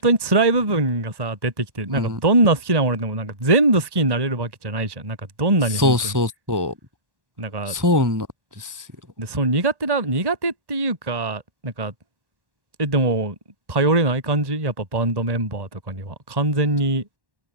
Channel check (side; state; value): left; late; 1.1 ms